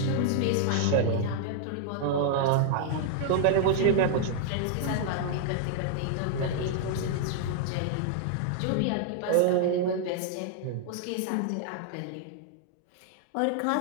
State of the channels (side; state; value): both; different; correlation -0.01